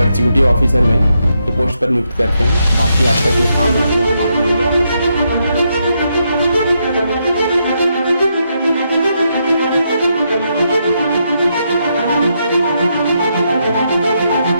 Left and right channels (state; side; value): inverted; both; correlation -0.80